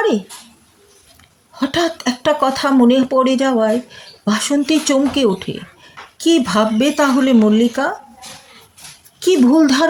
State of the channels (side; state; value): both; identical; correlation 1.00